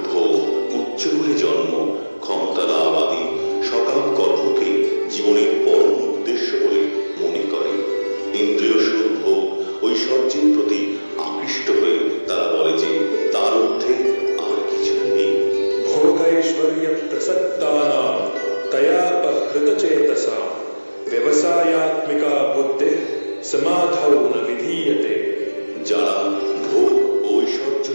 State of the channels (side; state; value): both; inverted; correlation -1.00